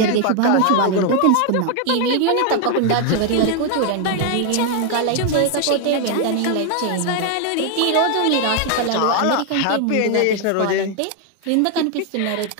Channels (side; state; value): both; different; correlation 0.01